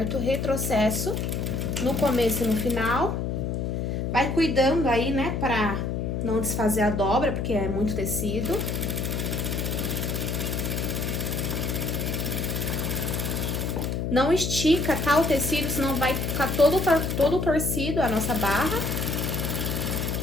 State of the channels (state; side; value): noise; left; hum, 1 dB below the sound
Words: Retrocesso no começo e no final. Vai cuidando aí, né, pra não desfazer a dobra, porque é muito tecido. Não estica, tá, o tecido, senão vai ficar todo torcido a nossa barra.